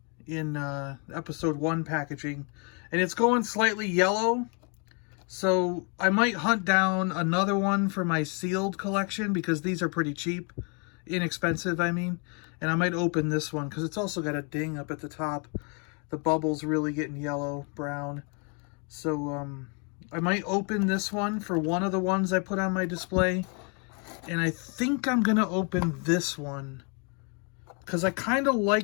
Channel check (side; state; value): right; quieter; 36.5 dB